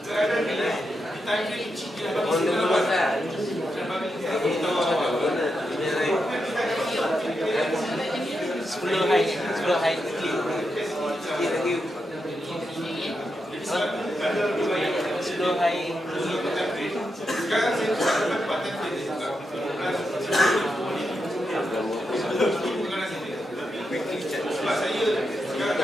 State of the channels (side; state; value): both; normal; correlation 0.85